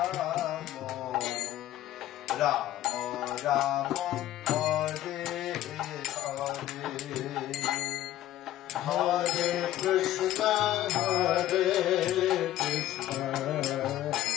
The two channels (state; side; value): quieter; right; 13.6 dB